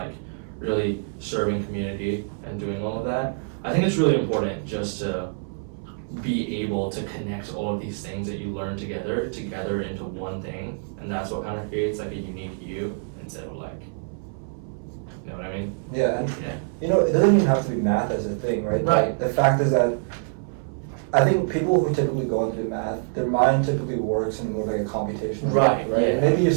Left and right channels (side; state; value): left; silent; 62 dB below the other